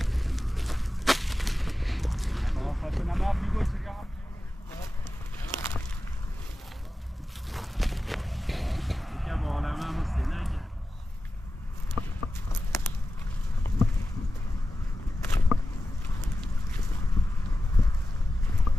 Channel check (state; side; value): normal; both; correlation 0.93